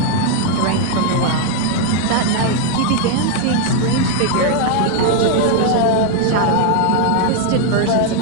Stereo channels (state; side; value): different; both; correlation 0.00